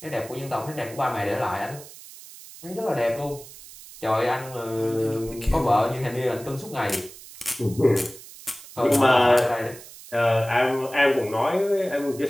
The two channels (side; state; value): right; noise; hiss, 17 dB below the sound